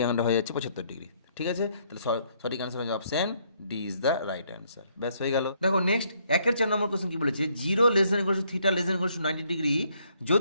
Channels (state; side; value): inverted; both; correlation -0.69